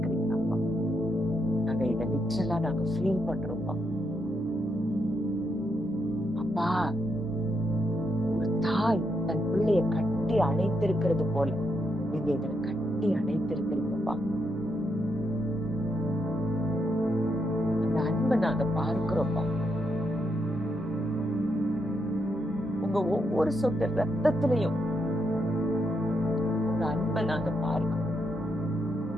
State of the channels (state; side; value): normal; both; correlation 0.80